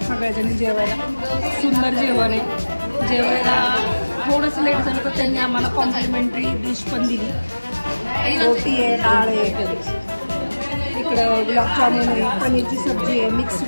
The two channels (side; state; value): both; inverted; correlation -1.00